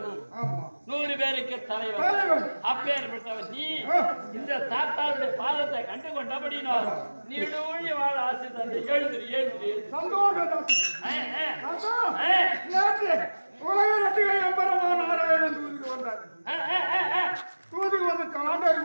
100 பேருக்கு தலைவர். அப்பேற்பட்டவன் நீ இந்த தாத்தாவுடைய பாதத்தை கண்டு கொண்டபடினோ நீடூழி வாழ ஆசை தந்தை. எழுதுரு எழுதுரு உலக ரட்டிகை எம்பரமா நாராயணன் தூதுக்கு வந்தார். தூதுக்கு வந்து காண்டாரி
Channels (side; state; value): both; inverted; correlation -1.00